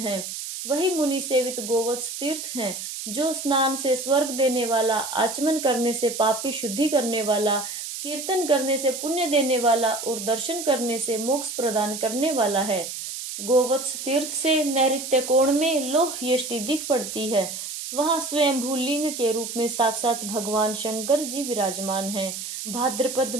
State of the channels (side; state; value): right; noise; hiss, 7 dB below the sound